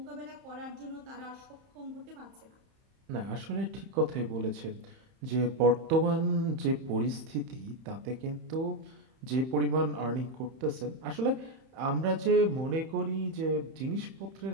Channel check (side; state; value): left; late; 31 ms